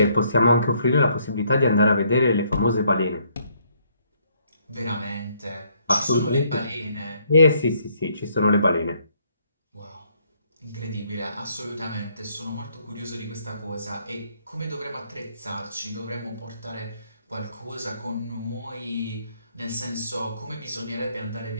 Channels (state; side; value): inverted; both; correlation -0.68